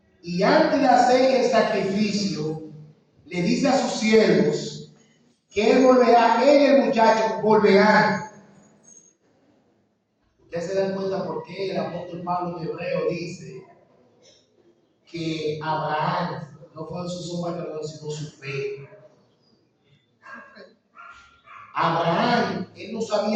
Y antes de hacer el sacrificio, le dice a sus siervos que él volverá, él y el muchacho volverán. Ustedes se dan cuenta por qué el apóstol Pablo en Hebreo dice que Abraham no fue su obra, sino su fe. Abraham, él no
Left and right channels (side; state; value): both; identical; correlation 1.00